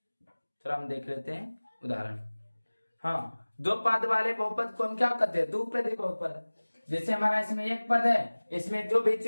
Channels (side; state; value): both; inverted; correlation -1.00